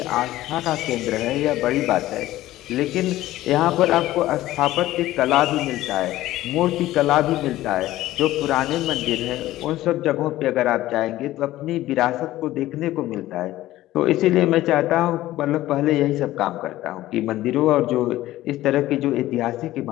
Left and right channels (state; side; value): quieter; right; 15.5 dB